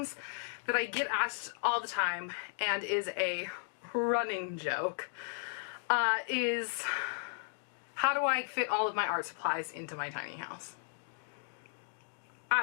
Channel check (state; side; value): silent; right; digital silence